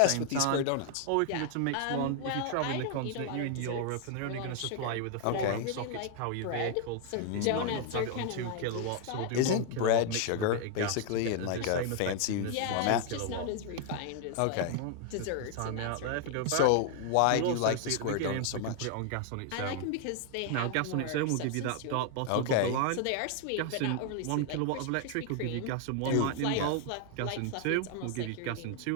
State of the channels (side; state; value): both; different; correlation 0.00